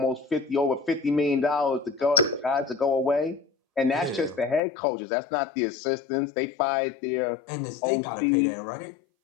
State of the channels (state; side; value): drops out; right; at 4.6 s